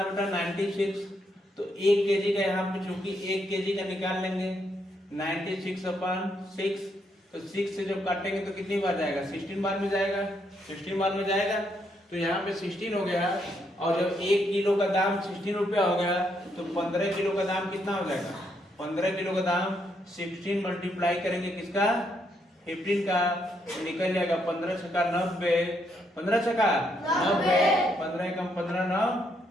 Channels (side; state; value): both; normal; correlation 0.76